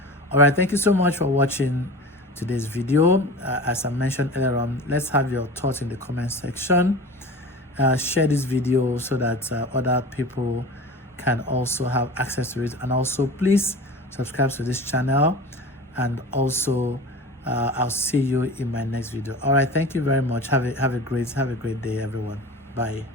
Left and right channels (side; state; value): both; normal; correlation 0.35